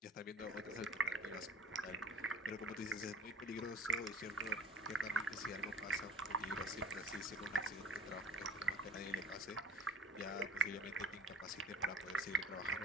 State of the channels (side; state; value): both; normal; correlation 0.44